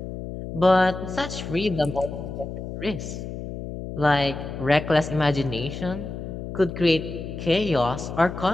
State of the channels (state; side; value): noise; left; hum, 8 dB below the sound